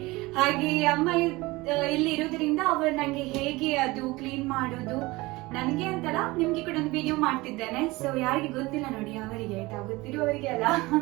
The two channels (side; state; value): left; quieter; 21.6 dB